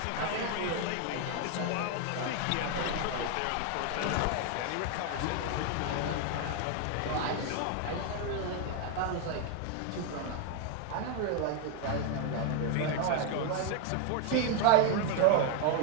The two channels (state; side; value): different; both; correlation 0.01